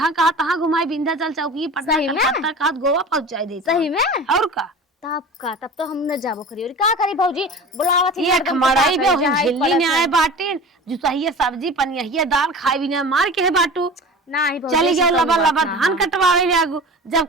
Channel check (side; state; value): both; normal; correlation 0.35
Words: कहा तहाँ घुमाई, विंध्याचल चौकी पटना सही में? कलकत्ता कहा गोवा पहुंचाई दे सही में। और का तब तो हम न जाबो करी। और का करी भौजी बुलावा थी ये खमड़ाई बे झिल्ली ने आए बाटे जुसाइया सब्जी पनिया दाल खाई भी ना मार के है बाटू नहीं भौजी चली गए लबा लबा हाँ। धान कटवावे जागू, जब